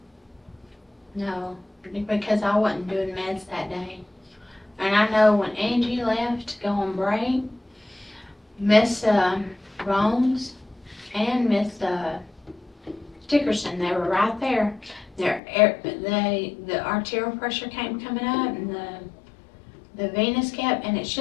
no, because I wasn't doing meds that day. And I know when Angie left to go on break, Miss Rones and Miss Dickerson, they were right there. The arterial pressure coming up, and the venous kept, and it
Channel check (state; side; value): drops out; right; at 15.4 s